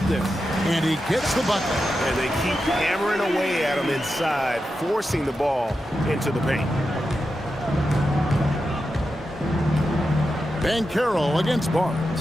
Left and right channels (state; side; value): normal; both; correlation 0.89